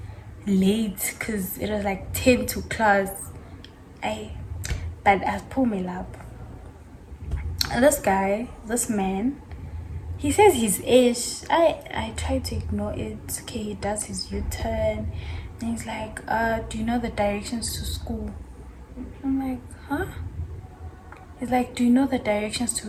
late because it was like 10 to class. But I pulled me up. And this man, he says his age. I tried to ignore it. Okay, he does his U-turn, and he's like, do you know the directions to school? I'm like, huh? He's like, do you know the directions to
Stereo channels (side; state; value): both; identical; correlation 1.00